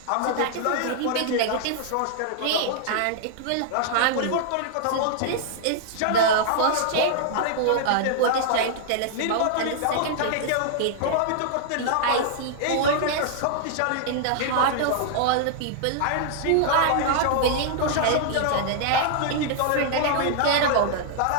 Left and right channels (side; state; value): both; different; correlation -0.01